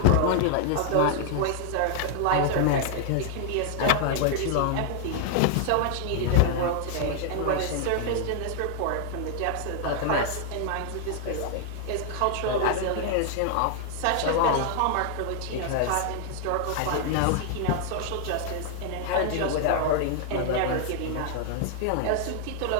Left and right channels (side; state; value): both; different; correlation 0.00